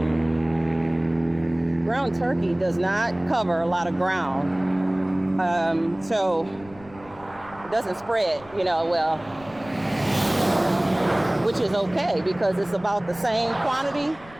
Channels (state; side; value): noise; left; rumble, 22 dB below the sound